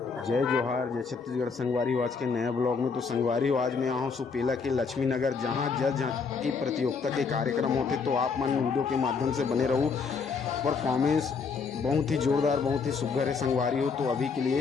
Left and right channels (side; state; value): right; quieter; 5.2 dB